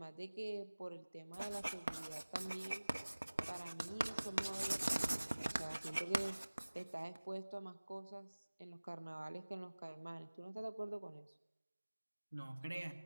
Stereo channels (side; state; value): both; inverted; correlation -1.00